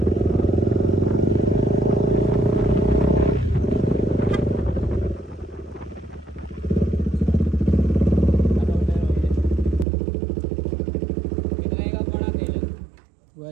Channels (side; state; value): left; drops out; at 9.9 s